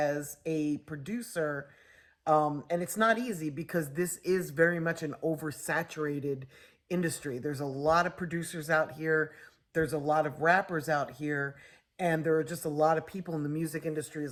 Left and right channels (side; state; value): both; identical; correlation 1.00